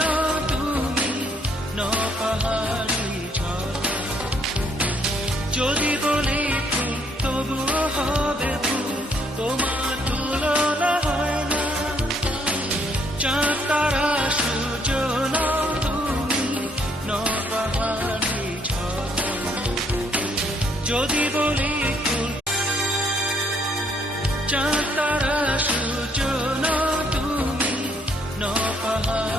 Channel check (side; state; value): both; normal; correlation 0.69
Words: না তুমি ন পাহাড়ি ঝর্ণা যদি বলি ফুল তবুও হবে ফুল তোমার তুলনা হয় না চাঁদ তারা সূর্য না তুমি ন পাহাড়ি ঝর্ণা যদি বলি ফুল চাঁদ তারা সূর্য না তুমি ন